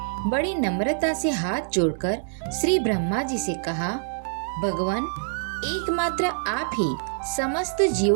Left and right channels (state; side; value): silent; left; 61 dB below the other